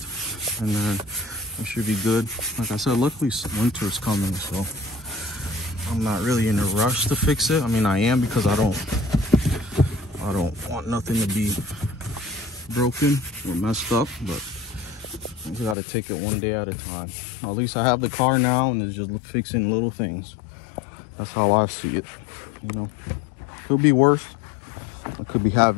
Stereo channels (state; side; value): drops out; right; at 15.8 s